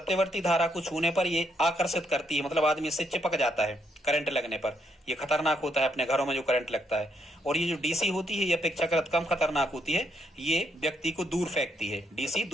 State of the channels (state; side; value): normal; both; correlation 0.75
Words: धारा को छूने पर ये आकर्षित करती है, मतलब आदमी इससे चिपक जाता है करंट लगने पर। ये खतरनाक होता है अपने घरों में जो करंट लगता है। और ये जो डीसी होती है ये अपेक्षाकृत कम खतरनाक होती है, ये व्यक्ति को दूर फेंकती है। डीसी